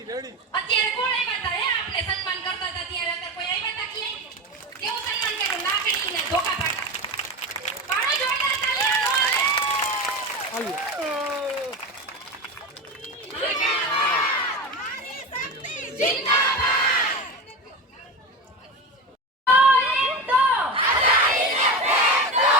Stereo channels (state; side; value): normal; both; correlation 0.23